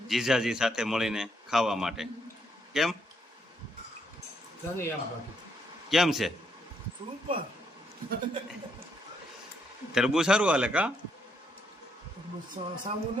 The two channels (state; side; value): normal; both; correlation 0.75